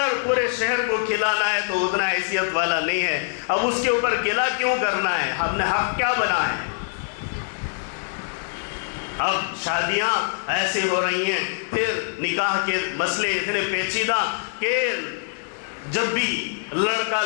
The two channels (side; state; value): right; silent; digital silence